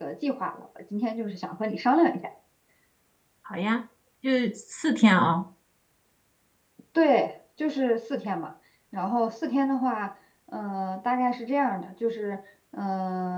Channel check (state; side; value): identical; both; correlation 1.00